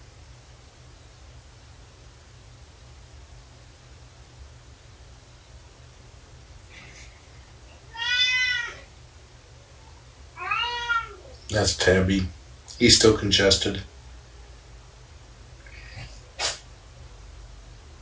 That's Tabby. He's still congested.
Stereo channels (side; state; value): both; identical; correlation 1.00